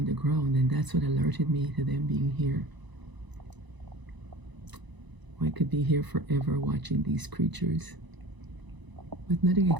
the ground, and that's what alerted me to them being here. I could be here forever watching these creatures. But nothing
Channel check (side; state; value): left; late; 1.0 ms